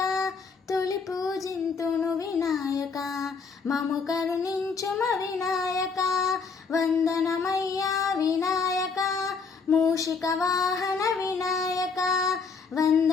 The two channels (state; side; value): quieter; right; 5.1 dB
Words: తొలి పూజింతును వినాయక మము కరుణించుమ వినాయక, వందనమయ్యా వినాయక మూషిక వాహన వినాయక,